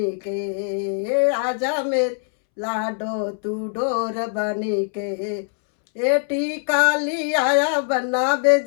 के, आजा मेरी लाडो तू डोर बनी के। ए टीका लिया बन्ना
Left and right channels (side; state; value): right; silent; 64 dB below the other